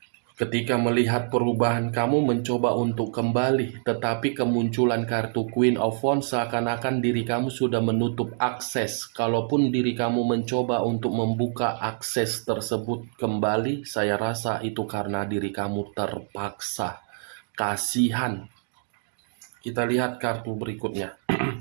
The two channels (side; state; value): left; silent; digital silence